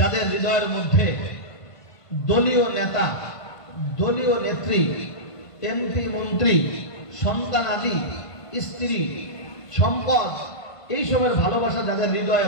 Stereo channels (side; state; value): right; late; 1.5 ms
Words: হৃদয়ের মধ্যে দলীয় নেতা, দলীয় নেত্রী, এমপি, মন্ত্রী, সন্তান আদি, স্ত্রী, সম্পদ, এইসবের ভালোবাসা যাদের হৃদয়ে